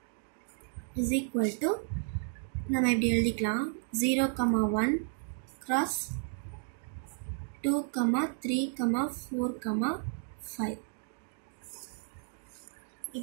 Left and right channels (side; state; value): left; silent; 56 dB below the other